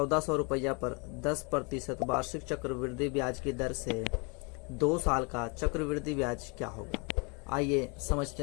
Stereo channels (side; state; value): right; quieter; 32.7 dB